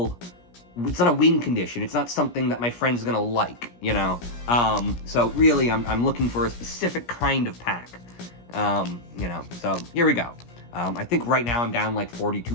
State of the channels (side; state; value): right; late; 17 ms